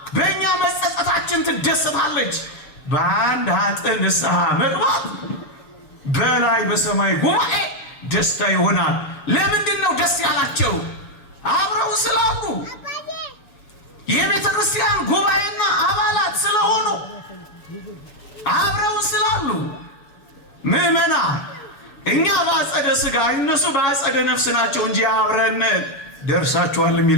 በእኛ መጸጸታችን ትደሰታለች። በአንድ ኃጥእ ንስሐ መግባት በላይ በሰማይ ጉባኤ ደስታ ይሆናል። ለምንድን ነው ደስ ያላቸው? አብረው ስላሉ፣ የቤተ ክርስቲያን ጉባኤና አባላት ስለሆኑ፣ አብረው ስላሉ። ምዕመና እኛ በአጸደ ሥጋ እነሱ በአጸደ ነፍስ ናቸው እንጂ አብረን ደርሳችኋል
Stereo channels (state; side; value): late; right; 7.0 ms